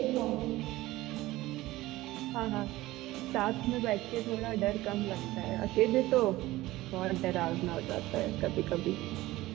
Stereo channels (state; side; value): quieter; left; 17.8 dB